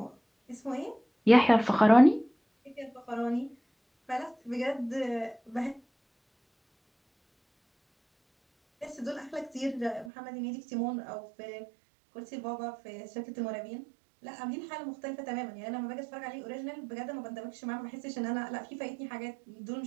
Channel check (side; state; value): left; drops out; at 10.1 s